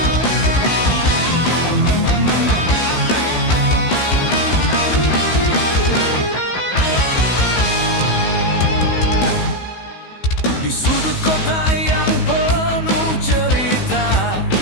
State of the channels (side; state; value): right; late; 16 ms